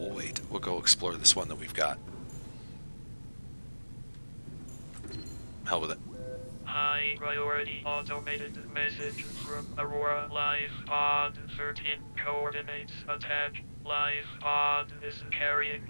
wait. We'll go explore this one that we've got. Hell with it. High priority automated message from Aurora Live Pod 13 coordinates attached. Live Pod is carrying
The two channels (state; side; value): inverted; both; correlation -1.00